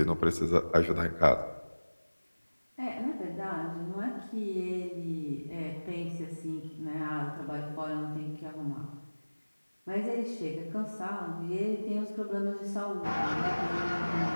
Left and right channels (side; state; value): both; inverted; correlation -1.00